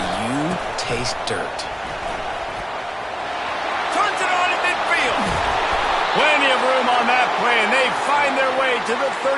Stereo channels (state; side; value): identical; both; correlation 1.00